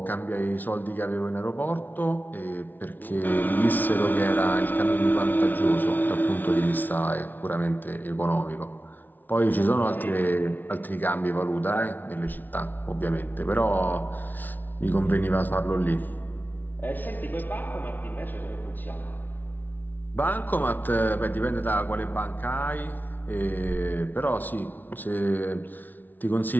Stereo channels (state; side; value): late; right; 0.084 ms